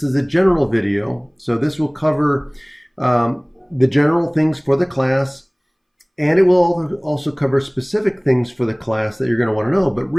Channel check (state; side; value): identical; both; correlation 1.00